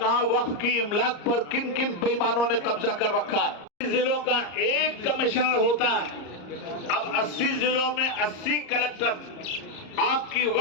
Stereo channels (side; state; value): right; late; 34 ms